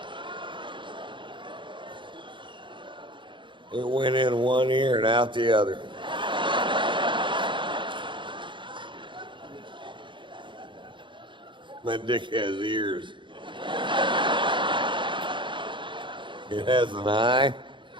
It went in one ear and out the other. My dick has ears. It has an eye,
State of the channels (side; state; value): left; late; 0.23 ms